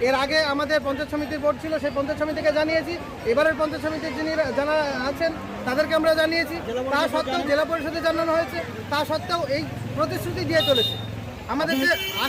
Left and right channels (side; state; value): both; identical; correlation 1.00